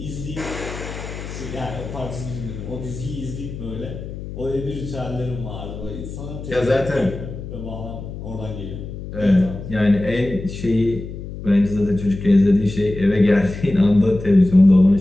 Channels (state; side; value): noise; left; hum, 10 dB below the sound